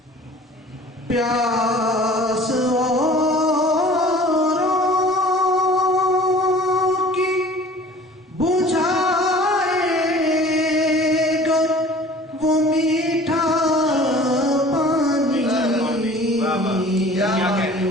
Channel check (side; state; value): both; normal; correlation 0.47